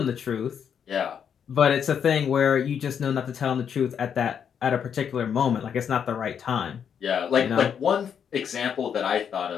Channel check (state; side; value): quieter; right; 7.8 dB